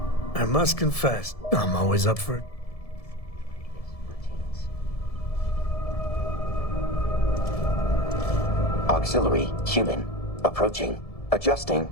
I must confess, I'm always up for it. Auxiliary human approaching. Adjusting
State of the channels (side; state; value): right; late; 1.7 ms